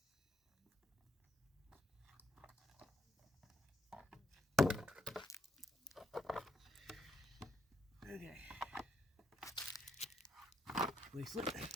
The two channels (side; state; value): both; normal; correlation 0.75